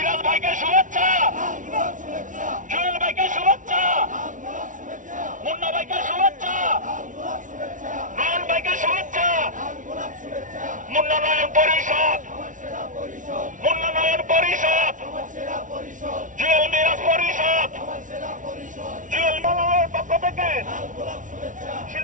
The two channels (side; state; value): left; late; 0.37 ms